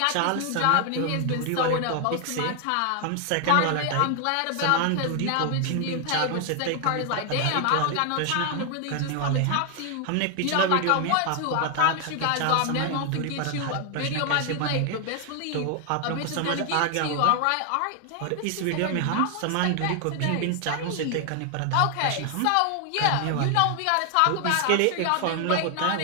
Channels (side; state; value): both; different; correlation 0.00